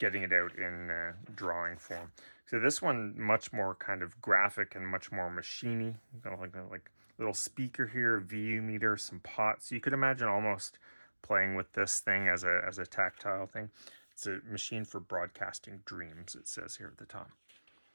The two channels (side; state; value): both; inverted; correlation -1.00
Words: it out in drawing form. So this one, much more kind of graphic and much more machiney. Like little speaker here, VU meter, some pots. You could imagine almost playing with this thing as a tactile thing. It's a machine for broadcasting dreams, it says here at the top.